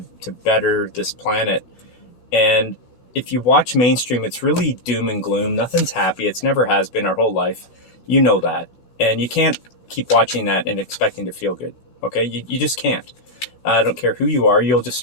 better this planet. And if you watch mainstream, it's really doom and gloom. Nothing's happy. It's never has been our whole life. You know that. And you can't keep watching that and expecting to feel good. Okay? You just can't. I don't care who you are. You'll just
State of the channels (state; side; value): late; right; 12 ms